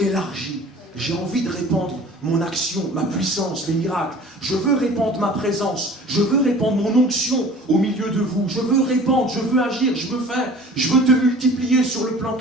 J'ai envie de répandre mon action, ma puissance, les miracles. Je veux répandre ma présence. Je veux répandre mon onction au milieu de vous. Je veux répandre, je veux agir, je veux faire. Je veux te multiplier sur le plan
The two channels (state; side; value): normal; both; correlation 0.45